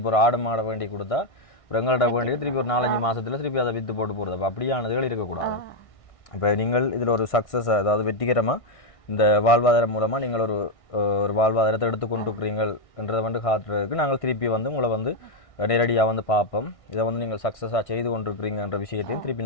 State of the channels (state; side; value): late; right; 1.6 ms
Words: ஒரு ஆடு மாடை வேண்டி கொடுத்தா ஒரு எங்கள்கிட்ட வேண்டி திருப்பி ஒரு 4-5 மாதத்தில் திருப்பி அதை விற்று போட்டு போகிறது. அப்போ அப்படியானதுகள் இருக்கக்கூடாது. இப்போ நீங்கள் இதில் ஒரு சக்ஸஸ், அதாவது வெற்றிகரமாக இந்த வாழ்வாதாரம் மூலமாக நீங்கள் ஒரு வாழ்வாதாரத்தை எடுத்துக்கொண்டிருக்கிறீங்கன்றதை வந்து காட்டுறதுக்கு நாங்கள் திருப்பி வந்து உங்களை வந்து நேரடியாக வந்து பார்ப்போம். இதை வந்து நீங்கள் சக்ஸஸாக செய்து கொண்டிருக்கிறீங்கன்ற விஷயத்தையும்